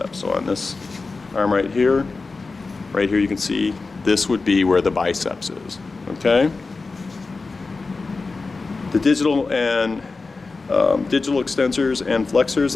So on this arm right here you can see this would be where the biceps is. Okay. The digital and digital extensors and flexors.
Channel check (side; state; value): right; quieter; 3.9 dB